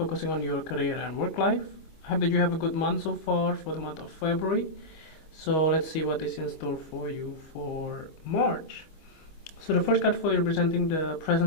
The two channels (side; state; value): right; late; 25 ms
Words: on your career and work life. I hope that you have a good month so far for the month of February. So let's see what is in store for you for March. So the first card for you representing the